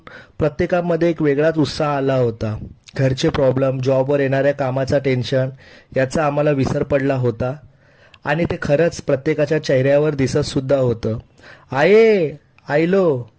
प्रत्येकामध्ये एक वेगळाच उत्साह आला होता. घरचे प्रॉब्लेम, जॉबवर येणाऱ्या कामाचा टेन्शन याचा आम्हाला विसर पडला होता आणि ते खरंच प्रत्येकाच्या चेहऱ्यावर दिसत सुद्धा होतं. आये आयलो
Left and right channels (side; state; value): both; identical; correlation 1.00